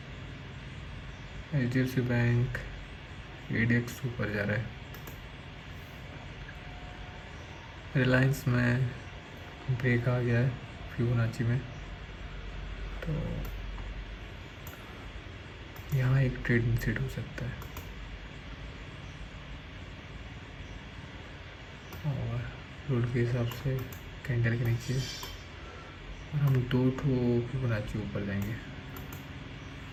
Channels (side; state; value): both; identical; correlation 1.00